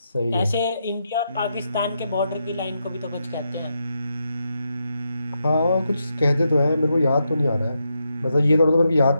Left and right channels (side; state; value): both; inverted; correlation -0.83